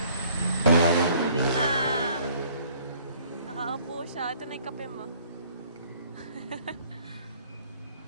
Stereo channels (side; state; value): both; inverted; correlation -0.58